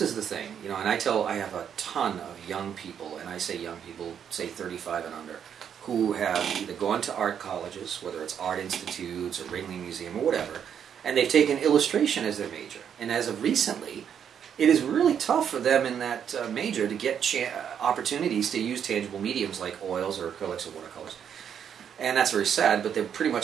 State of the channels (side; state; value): left; quieter; 8.4 dB